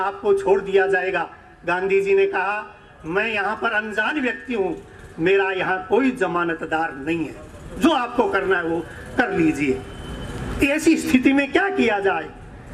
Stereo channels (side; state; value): both; identical; correlation 1.00